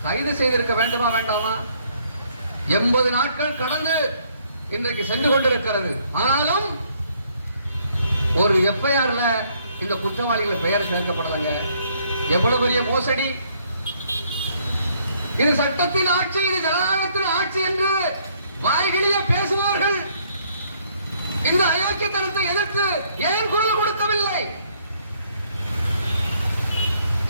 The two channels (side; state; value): both; inverted; correlation -0.67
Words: கைது செய்திருக்க வேண்டுமா வேண்டாமா? 80 நாட்கள் கடந்து இன்றைக்கு சென்று கொண்டிருக்கிறது. ஆனாலும் ஒரு எஃப்ஐஆர்ல இந்த குற்றவாளிகள் பெயர் சேர்க்கப்படலங்க. எவ்வளவு பெரிய மோசடி! இது சட்டத்தின் ஆட்சி, இது ஜனநாயகத்தின் ஆட்சி என்று வாய்களிலே பேசுவார்கள். இந்த அயோக்கியத்தனத்தை எதிர்த்து ஏன் குரல் கொடுக்கவில்லை?